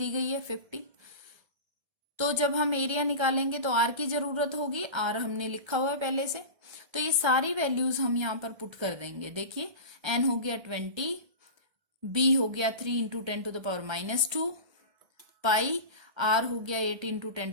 गई है 50। तो जब हम एरिया निकालेंगे तो आर की जरूरत होगी, आर हमने लिखा हुआ है पहले से, तो ये सारी वैल्यूज हम यहाँ पर पुट कर देंगे। देखिए एन हो गया 20, बी हो गया 3 × 10⁻², पाई आर हो गया 8 ×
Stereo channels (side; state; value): left; late; 1.3 ms